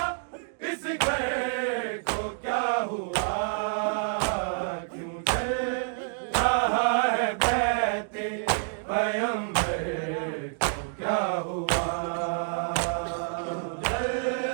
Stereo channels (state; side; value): silent; left; digital silence